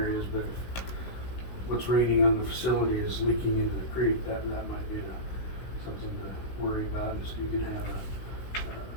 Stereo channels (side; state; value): right; late; 16 ms